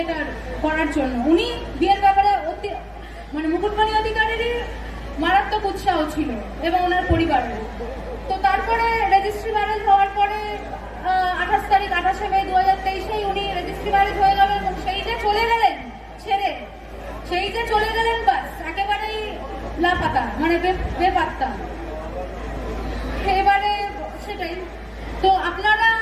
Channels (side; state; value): both; identical; correlation 1.00